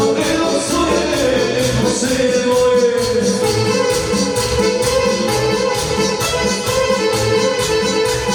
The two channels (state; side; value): identical; both; correlation 1.00